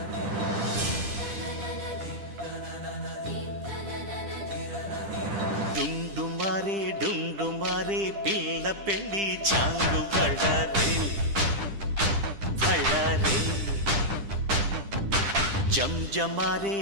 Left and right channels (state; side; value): late; left; 10 ms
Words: డుండుమారే పిల్ల పెళ్ళి చాంగు బళ్ళారే బళ్ళారే